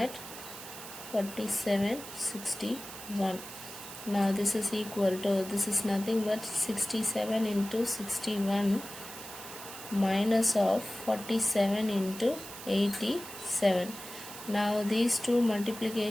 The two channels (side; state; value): right; noise; hiss, 12 dB below the sound